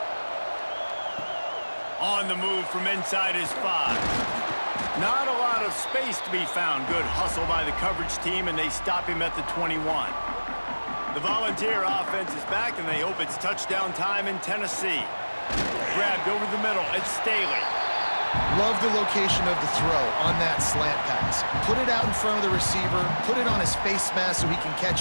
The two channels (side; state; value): both; inverted; correlation -1.00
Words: On the move from inside his 5. Not a lot of space to be found. Good hustle by the coverage team, and they stop him at the 21. The Volunteer offense is back, and they hope it's touchdown time in Tennessee. Grabbed over the middle. It's Staley. Love the location of the throw on that slant pass. Put it out in front of the receiver, put it on his face mask so he can